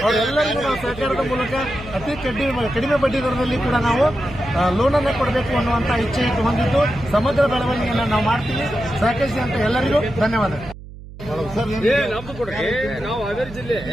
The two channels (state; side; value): noise; right; hum, 15 dB below the sound